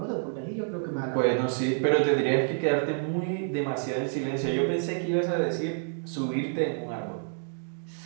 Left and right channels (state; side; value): silent; left; digital silence